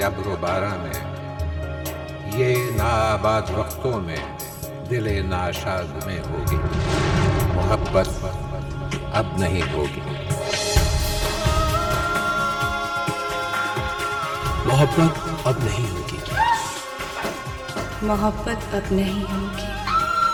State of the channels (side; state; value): both; identical; correlation 1.00